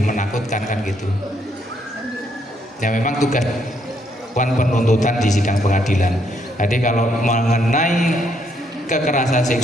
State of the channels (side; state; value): both; normal; correlation 0.73